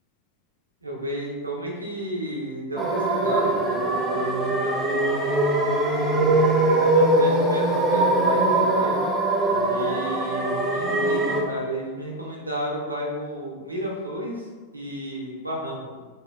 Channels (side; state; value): both; normal; correlation 0.09